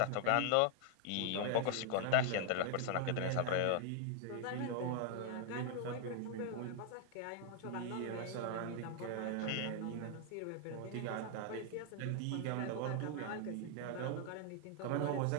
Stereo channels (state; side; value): different; both; correlation 0.00